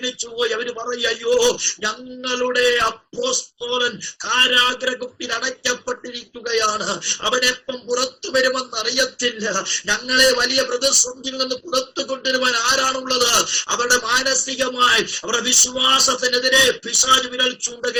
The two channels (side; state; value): both; identical; correlation 1.00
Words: പറയയ്യോ, ഞങ്ങളുടെ അപ്പോസ്തലൻ കാരാഗ്രഹത്തിൽ അടയ്ക്കപ്പെട്ടിരിക്കുകയാണ്, അവനെപ്പം പുറത്തു വരുമെന്ന് അറിയത്തില്ല. ഞങ്ങളെ വലിയ പ്രതിസന്ധിയിൽ നിന്ന് പുറത്തു കൊണ്ടുവരുവാൻ ആരാണുള്ളത്? അവരുടെ മാനസികമായി, അവരുടെ വിശ്വാസത്തിനെതിരെ പിശാച് വിരൽ